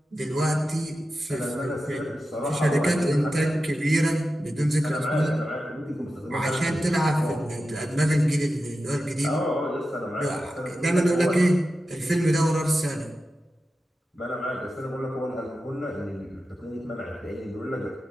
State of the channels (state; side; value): normal; both; correlation 0.92